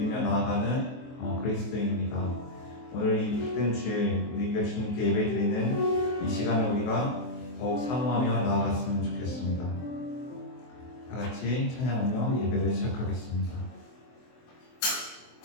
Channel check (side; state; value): right; late; 24 ms